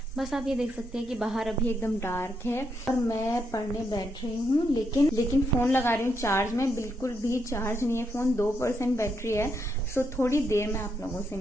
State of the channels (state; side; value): normal; both; correlation 0.79